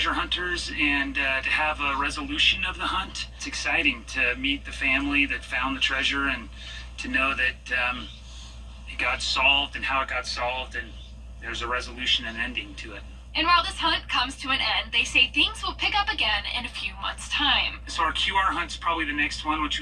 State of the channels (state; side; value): identical; both; correlation 1.00